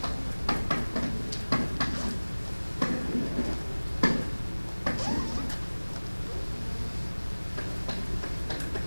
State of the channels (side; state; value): both; inverted; correlation -1.00